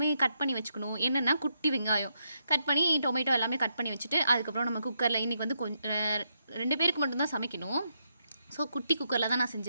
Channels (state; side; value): inverted; both; correlation -0.80